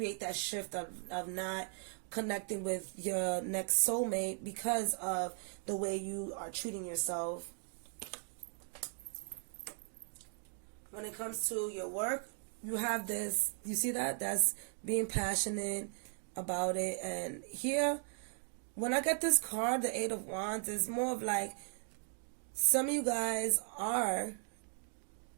that shift of not connecting with your next soulmate because of the way you are treating yourself. When it comes to your work, you have this, you see that? That's being passionate, about it. And here, when I get this card, the Eight of Wands, it's more of like some of you guys are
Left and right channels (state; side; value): silent; left; 53 dB below the other